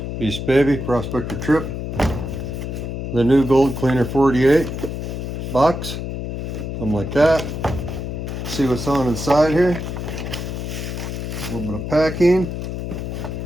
Beast Baby, Prospector Tripp. The new Gold Cleaner 48 box. Something like that. See what's on inside here. A little bit of packing.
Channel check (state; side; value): noise; left; hum, 5 dB below the sound